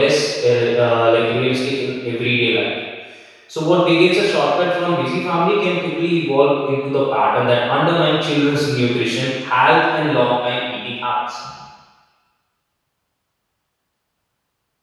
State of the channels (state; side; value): identical; both; correlation 1.00